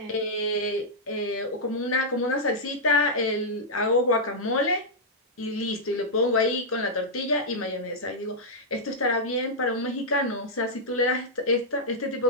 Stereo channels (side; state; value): both; normal; correlation -0.08